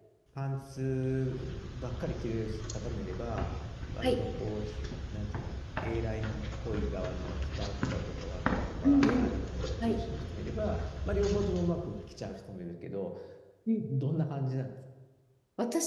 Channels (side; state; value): both; identical; correlation 1.00